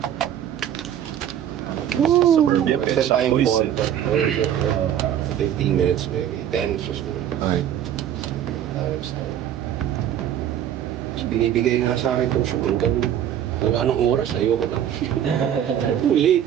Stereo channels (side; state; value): left; quieter; 10.3 dB